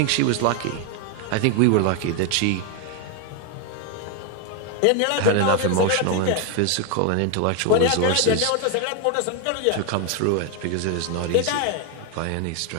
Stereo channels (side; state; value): both; different; correlation 0.01